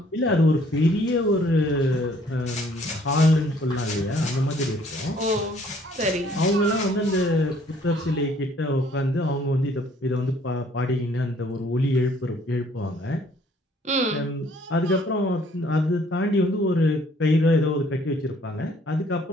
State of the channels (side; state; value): both; normal; correlation 0.61